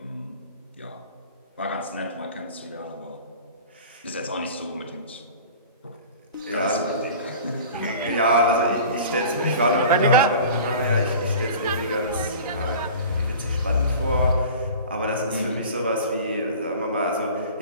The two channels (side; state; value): both; inverted; correlation -0.41